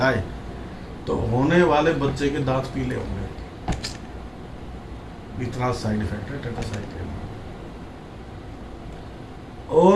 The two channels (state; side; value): identical; both; correlation 1.00